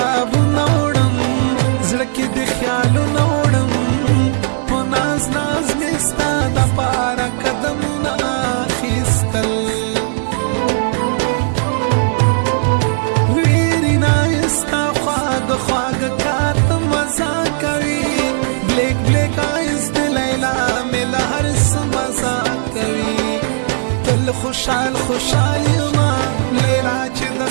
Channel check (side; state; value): left; silent; digital silence